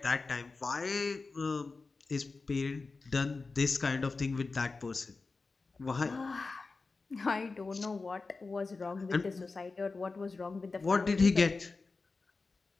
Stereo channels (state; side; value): quieter; right; 4.0 dB